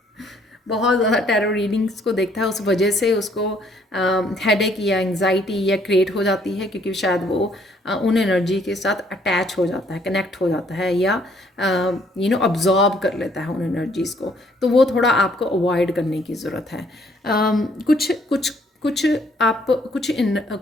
बहुत ज़्यादा टैरो रीडिंग्स को देखता है, उस वजह से उसको हेडेक या एंग्जाइटी या क्रिएट हो जाती है, क्योंकि शायद वो उन एनर्जी के साथ अटैच हो जाता है, कनेक्ट हो जाता है, या अब्जॉर्ब कर लेता है उन एनर्जीज़ को। तो वो थोड़ा आपको अवॉइड करने की ज़रूरत है। कुछ कुछ कुछ आप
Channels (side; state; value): both; normal; correlation 0.65